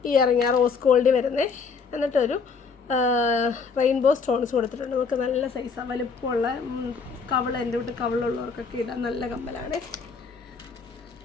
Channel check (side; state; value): right; quieter; 5.2 dB